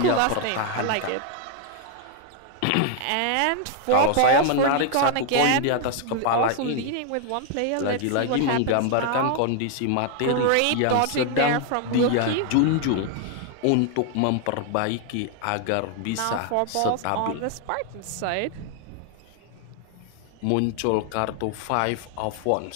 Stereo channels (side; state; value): both; different; correlation 0.00